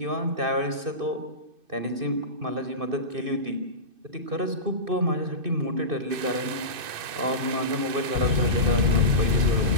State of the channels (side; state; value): left; late; 2.6 ms